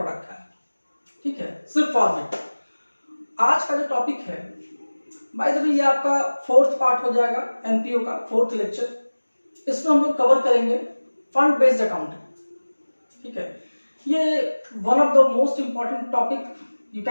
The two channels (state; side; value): inverted; both; correlation -1.00